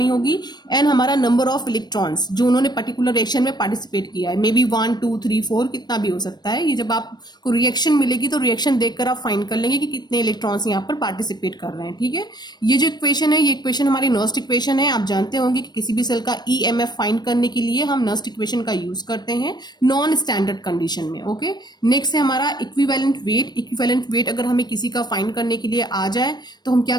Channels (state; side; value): late; right; 0.20 ms